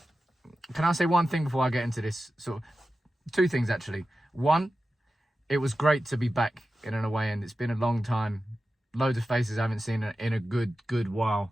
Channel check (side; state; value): both; normal; correlation 0.93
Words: Can I say one thing before I get into this? Two things, actually. One, it was great to be back in an away end. It's been a long time. Loads of faces I haven't seen in a good